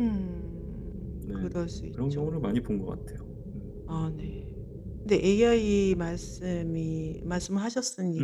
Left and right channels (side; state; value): both; identical; correlation 1.00